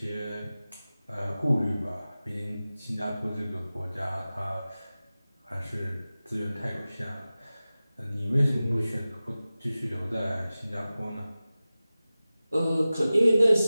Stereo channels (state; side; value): inverted; both; correlation -0.96